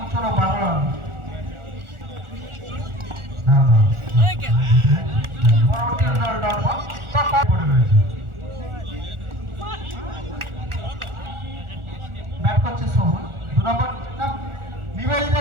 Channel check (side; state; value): left; late; 1.4 ms